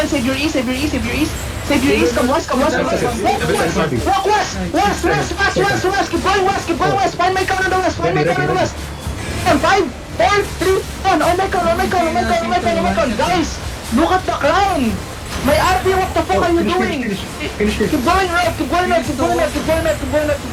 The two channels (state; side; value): identical; both; correlation 1.00